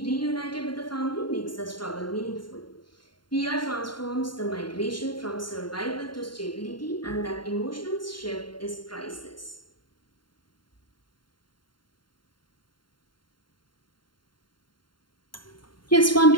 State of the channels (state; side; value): late; right; 0.72 ms